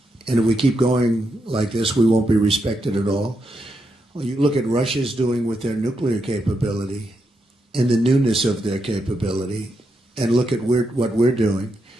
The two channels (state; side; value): normal; both; correlation 0.83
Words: and if we keep going like this, we won't be respected at all. Well, you look at Russia's doing with their nuclear capability and the newness of their capability, and look at what we're doing,